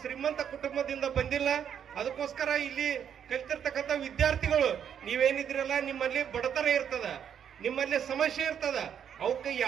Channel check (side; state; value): left; quieter; 8.6 dB